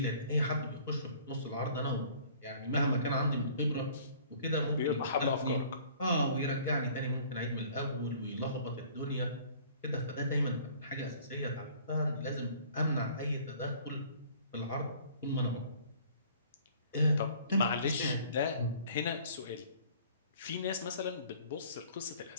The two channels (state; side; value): inverted; both; correlation -0.52